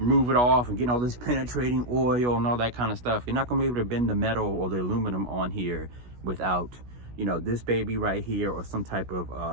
it off and getting all this penetrating oil and all that kind of stuff. You're not gonna be able to bend the metal or the aluminum on here without, you know, this baby right here, or some type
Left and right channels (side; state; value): left; late; 16 ms